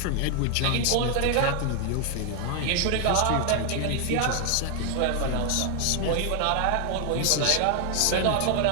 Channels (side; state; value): both; different; correlation 0.00